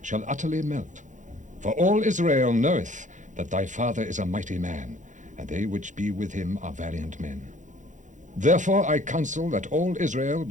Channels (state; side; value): late; left; 0.36 ms